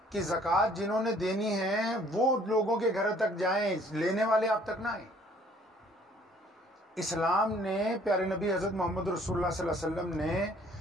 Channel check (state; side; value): normal; both; correlation 0.58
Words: کہ زکوٰۃ جنہوں نے دینی ہے وہ لوگوں کے گھر تک جائیں، لینے والے آپ تک نہ آئیں۔ اسلام نے، پیارے نبی حضرت محمد رسول اللہ صلی اللہ علیہ وسلم